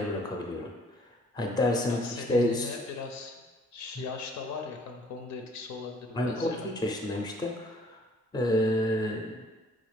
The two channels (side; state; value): both; normal; correlation 0.59